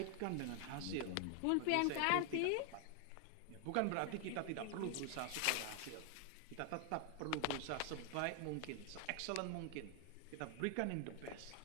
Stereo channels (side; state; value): both; different; correlation 0.00